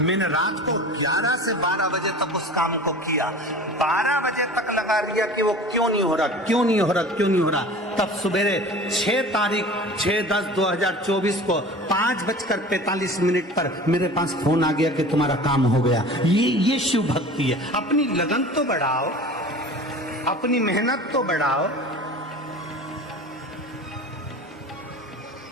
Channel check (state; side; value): normal; both; correlation 0.39